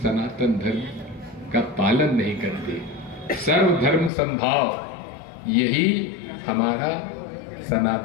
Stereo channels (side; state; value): right; drops out; at 4.1 s